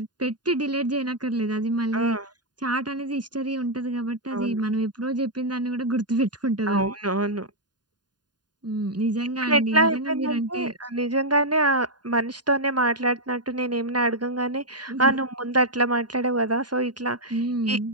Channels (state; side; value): late; left; 0.70 ms